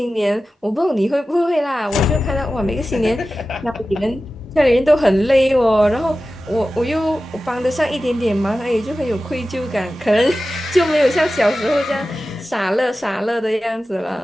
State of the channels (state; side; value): normal; both; correlation 0.94